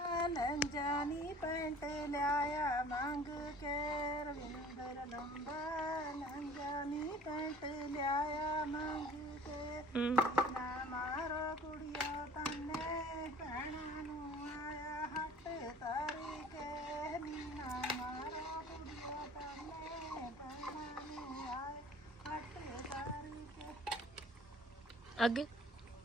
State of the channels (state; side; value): normal; both; correlation 0.48